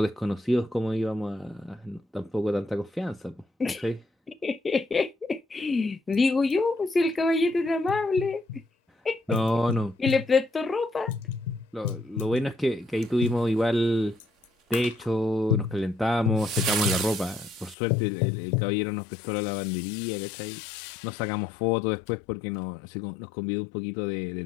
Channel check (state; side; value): drops out; right; at 17.8 s